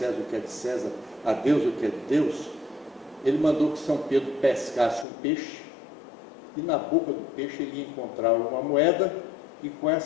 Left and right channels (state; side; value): drops out; right; at 5.1 s